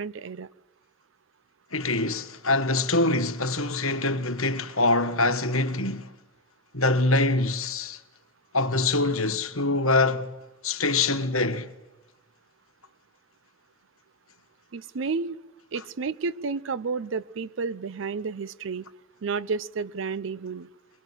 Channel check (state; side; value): normal; both; correlation -0.02